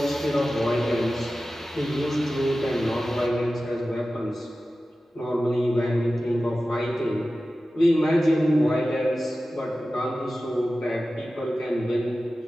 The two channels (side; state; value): both; normal; correlation 0.95